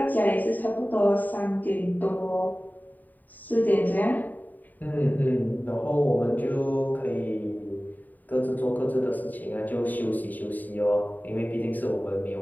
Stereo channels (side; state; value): right; late; 0.086 ms